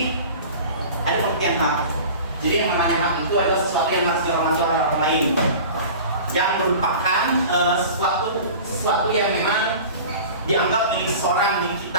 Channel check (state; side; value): inverted; both; correlation -0.38